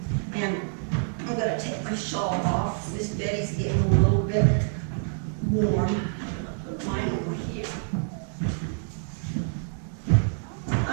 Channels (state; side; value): silent; left; 60 dB below the other